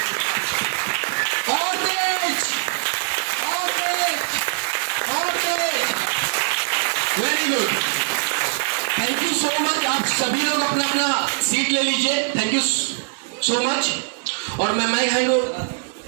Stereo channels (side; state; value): left; silent; 64 dB below the other